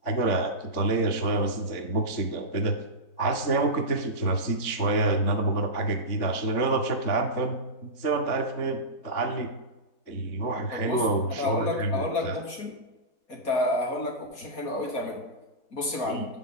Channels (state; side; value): late; right; 4.2 ms